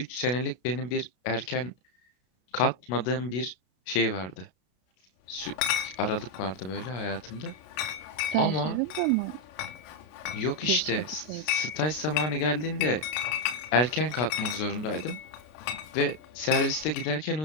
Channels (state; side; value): late; right; 32 ms